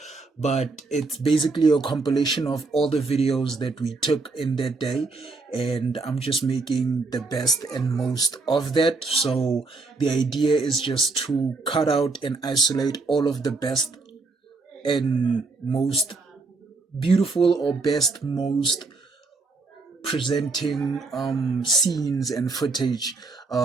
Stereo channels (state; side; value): quieter; left; 3.8 dB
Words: but it's basically a compilation of all the videos that we took in that day, and I'm just making the best and most of that. So the idea is just to cut out and isolate all of the best and most beautiful, or best, most presenting scenes and footage